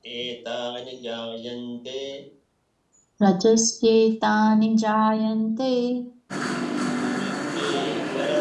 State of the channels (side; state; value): both; identical; correlation 1.00